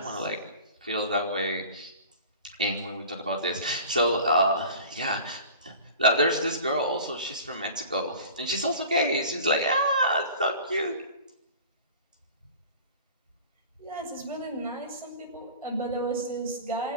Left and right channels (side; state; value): both; inverted; correlation -0.41